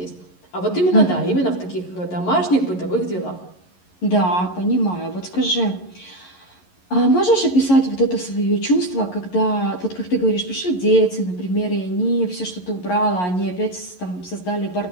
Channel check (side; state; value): right; late; 11 ms